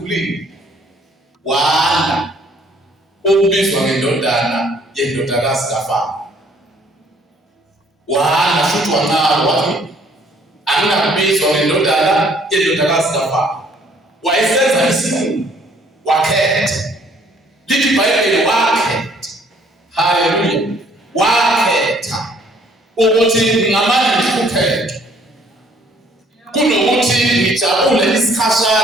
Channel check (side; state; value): both; normal; correlation 0.61